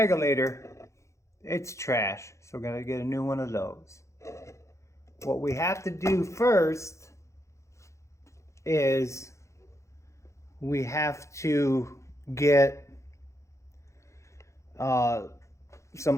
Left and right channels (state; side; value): late; right; 0.14 ms